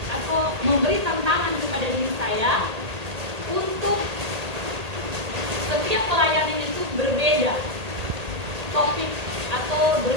atau memberi tantangan kepada diri saya untuk setiap pelayanan itu berbeda topik atau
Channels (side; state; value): left; late; 1.8 ms